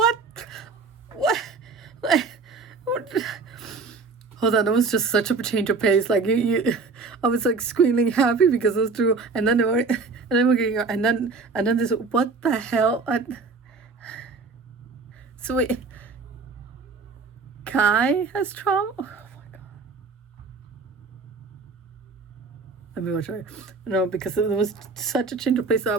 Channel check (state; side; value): quieter; left; 4.3 dB